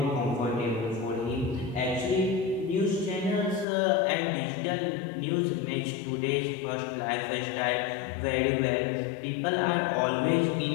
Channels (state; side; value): drops out; right; at 3.7 s